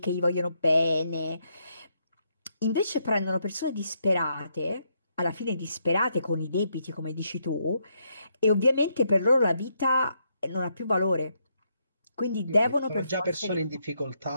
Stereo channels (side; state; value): both; inverted; correlation -0.77